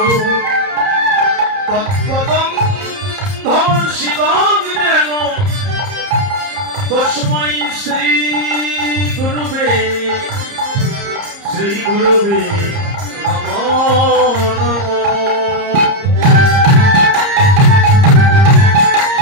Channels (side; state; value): left; late; 30 ms